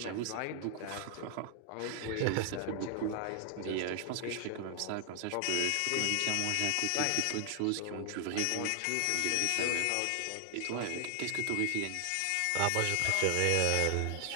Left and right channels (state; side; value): different; both; correlation 0.00